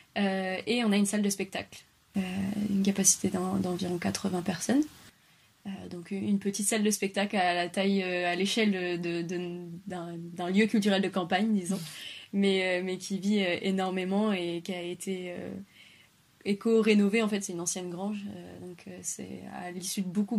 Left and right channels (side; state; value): both; identical; correlation 1.00